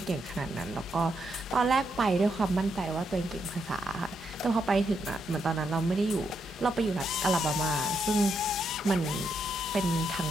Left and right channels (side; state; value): both; normal; correlation 0.80